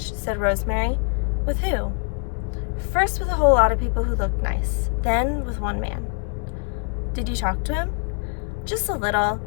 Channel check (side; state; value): right; quieter; 39.9 dB